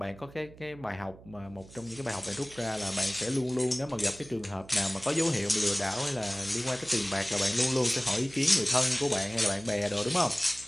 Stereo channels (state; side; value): noise; right; hum, 20 dB below the sound